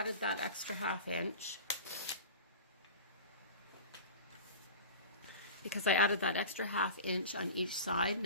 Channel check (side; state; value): both; inverted; correlation -0.33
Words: that extra 1/2 inch, on each side,